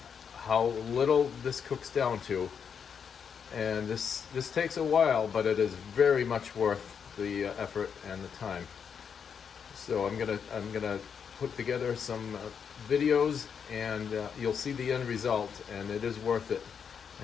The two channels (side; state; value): right; quieter; 7.0 dB